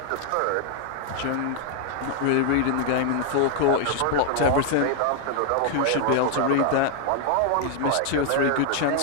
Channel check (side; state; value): both; different; correlation 0.00